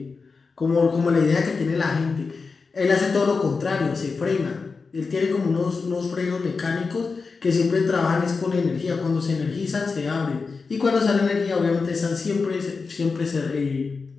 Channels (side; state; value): right; quieter; 4.6 dB